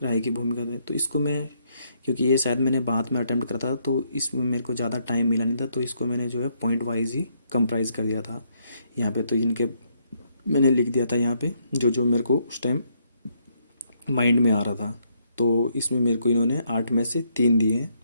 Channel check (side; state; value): both; inverted; correlation -0.73